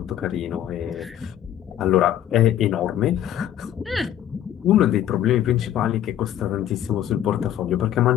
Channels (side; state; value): right; quieter; 11.2 dB